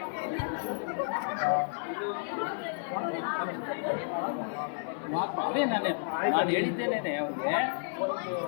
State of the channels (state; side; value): silent; right; 57 dB below the other